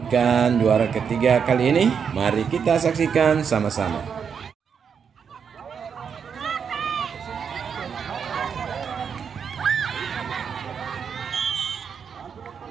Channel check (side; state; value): left; quieter; 6.8 dB